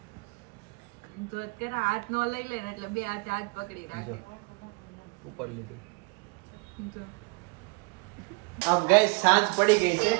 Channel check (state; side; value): quieter; left; 29.8 dB